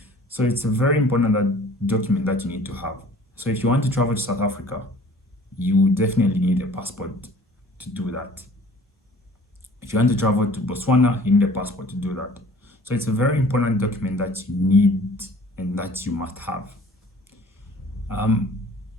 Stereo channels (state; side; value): normal; both; correlation 0.50